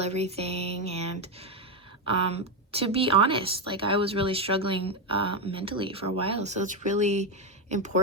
everything. And to be honest, like, I was really struggling mentally for a while, so it's really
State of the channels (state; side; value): normal; both; correlation 0.08